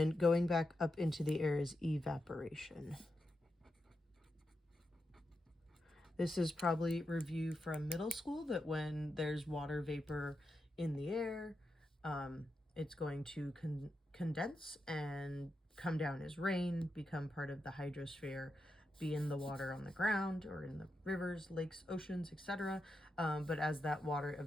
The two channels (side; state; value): both; normal; correlation 0.87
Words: going back up into the air is evaporation. This is probably review from middle school, that when there's water vapor in the air, it's going to condense and come down as rain, become part of the hydrosphere, be in the water on the ground or in the rivers, lakes, oceans, etc. But as that water